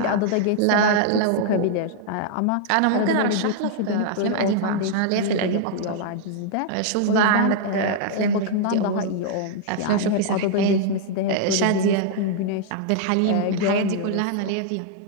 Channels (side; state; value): both; different; correlation -0.01